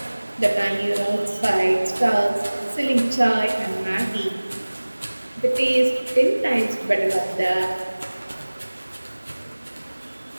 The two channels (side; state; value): both; inverted; correlation -1.00